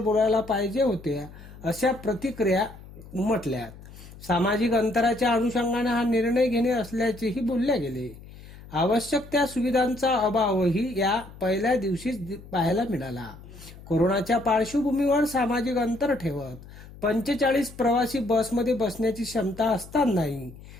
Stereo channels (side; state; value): left; noise; hum, 18 dB below the sound